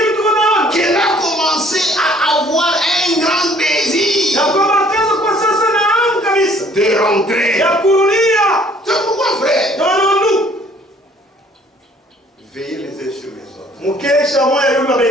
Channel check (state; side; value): normal; both; correlation 0.58